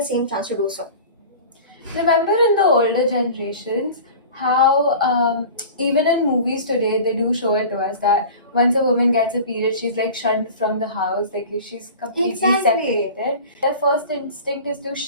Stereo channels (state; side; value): inverted; both; correlation -0.38